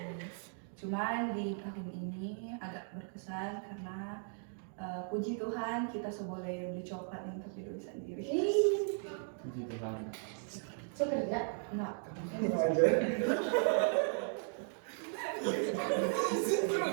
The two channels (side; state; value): left; silent; 53 dB below the other